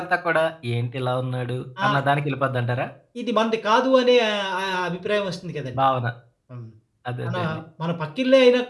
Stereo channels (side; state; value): both; identical; correlation 1.00